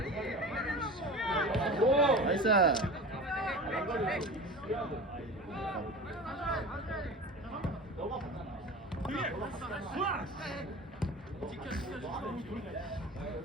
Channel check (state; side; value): normal; both; correlation 0.34